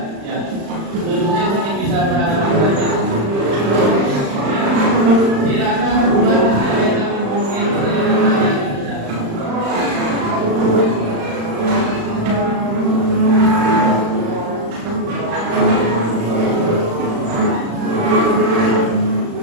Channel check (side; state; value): left; late; 35 ms